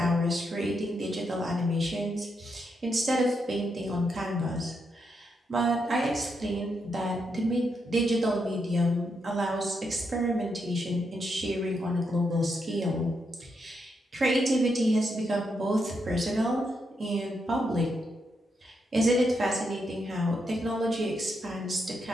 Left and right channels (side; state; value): both; normal; correlation 0.81